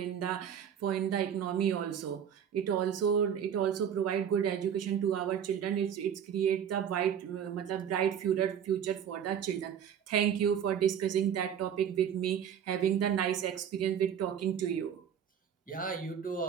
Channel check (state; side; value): quieter; left; 8.6 dB